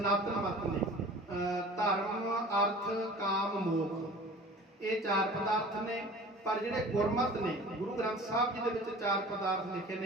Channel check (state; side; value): normal; both; correlation 0.43